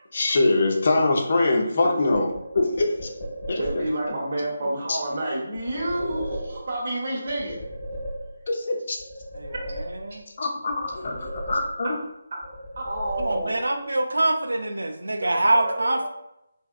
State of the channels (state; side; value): inverted; both; correlation -0.89